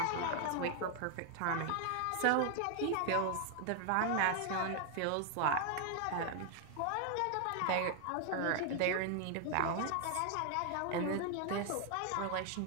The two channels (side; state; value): both; different; correlation 0.00